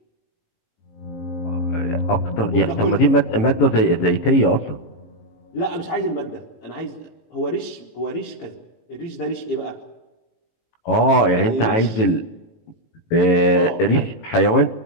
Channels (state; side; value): late; right; 18 ms